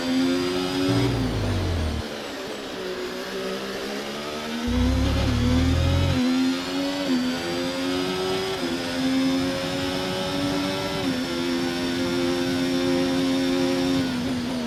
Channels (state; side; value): identical; both; correlation 1.00